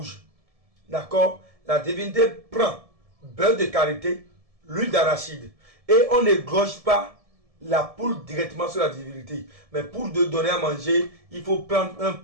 D'accord? La divinité prend beurre de karité, l'huile d'arachide. Et on n'égorge pas la poule directement sur la divinité. Mais pour donner à manger, il faut prendre un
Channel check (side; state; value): left; late; 1.7 ms